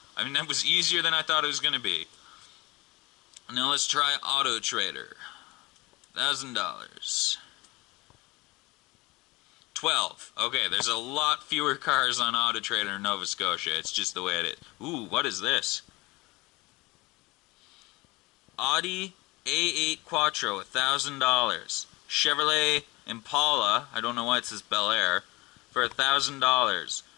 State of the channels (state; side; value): quieter; right; 22.6 dB